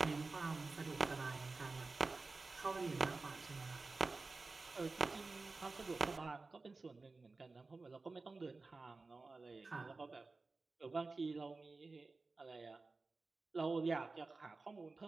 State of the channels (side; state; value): left; quieter; 3.7 dB